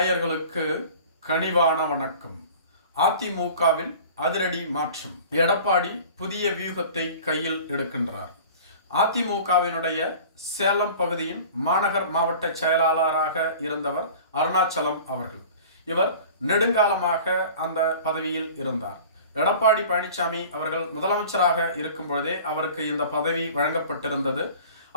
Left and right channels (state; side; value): inverted; both; correlation -0.42